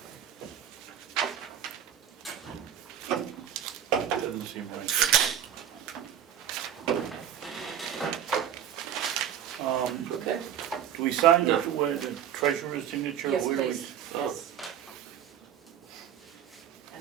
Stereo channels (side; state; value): left; quieter; 9.8 dB